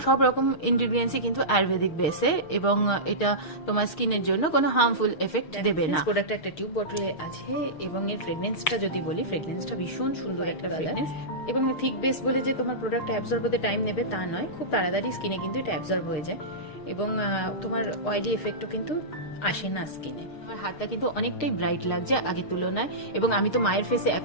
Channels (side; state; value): right; late; 6.5 ms